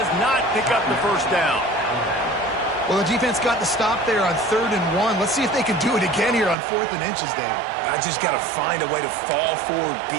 Well, the defense got the stop there on 3rd and 1. Let's see if they can do it again here on 4th and inches, Dave. I just got to find a way to fall forward, be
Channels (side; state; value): left; drops out; at 6.6 s